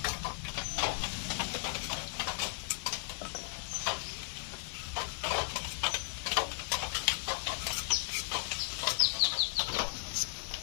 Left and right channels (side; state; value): right; silent; 54 dB below the other